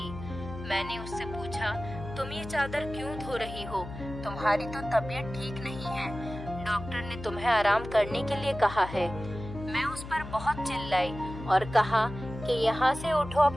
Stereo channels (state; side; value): noise; left; hum, 11 dB below the sound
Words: मैंने उससे पूछा, तुम ये चादर क्यों धो रही हो? तुम्हारी तो तबीयत ठीक नहीं है, डॉक्टर ने तुम्हें आराम करने के लिए कहा है। मैं उस पर बहुत चिल्लाई और कहा कि यहाँ से उठो,